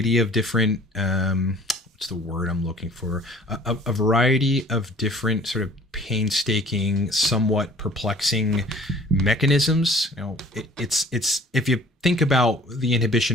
of different, what's the word I'm looking for? A variety of different sort of painstaking, somewhat perplexing mechanisms. It's if you think about the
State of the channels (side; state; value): both; normal; correlation 0.51